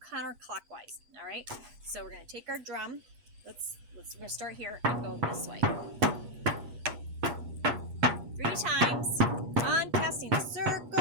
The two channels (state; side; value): late; left; 7.4 ms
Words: All right, so we're going to take our drum. We're going to start here and go this way 3 times, uncasting the